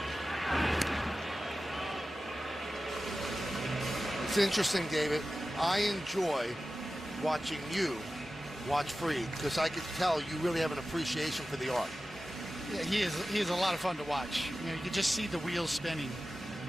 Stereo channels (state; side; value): normal; both; correlation 0.95